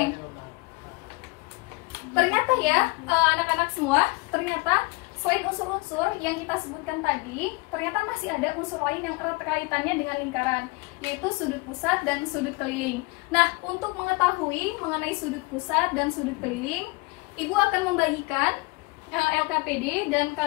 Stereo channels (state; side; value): quieter; right; 26.5 dB